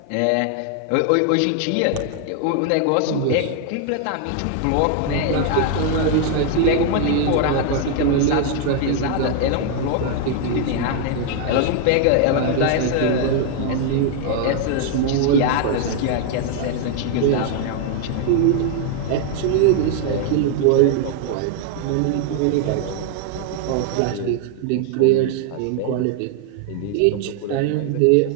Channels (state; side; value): different; both; correlation 0.00